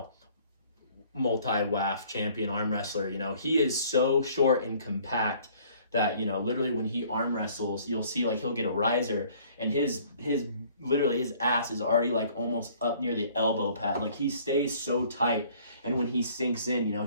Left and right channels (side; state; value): both; inverted; correlation -0.56